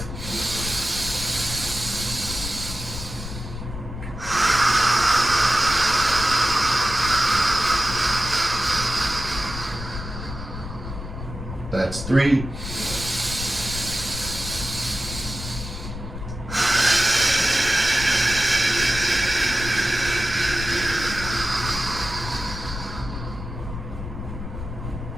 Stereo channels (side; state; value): left; noise; rumble, 9 dB below the sound